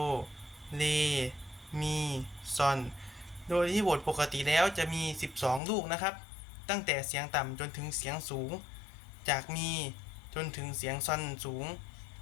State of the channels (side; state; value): right; drops out; at 5.6 s